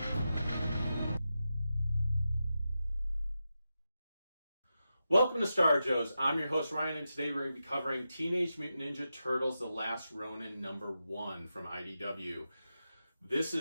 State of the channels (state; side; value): inverted; both; correlation -0.89